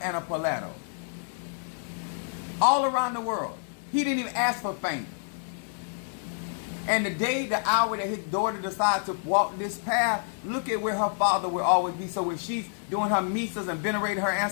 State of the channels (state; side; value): silent; right; digital silence